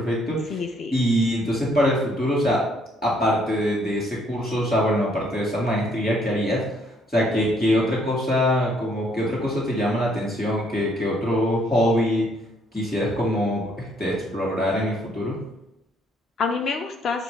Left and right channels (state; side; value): normal; both; correlation 0.67